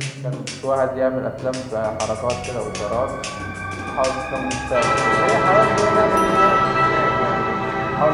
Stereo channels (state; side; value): identical; both; correlation 1.00